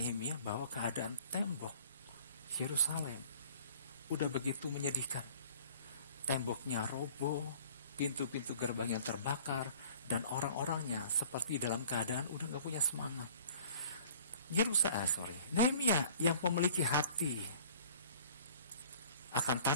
bahwa keadaan tembok Yerusalem udah begitu menyedihkan. Temboknya roboh, pintu-pintu gerbang yang terbakar, dan orang-orangnya seperti dalam keadaan udah gak punya semangat. Nehemia yang memiliki hati akan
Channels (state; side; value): inverted; both; correlation -0.51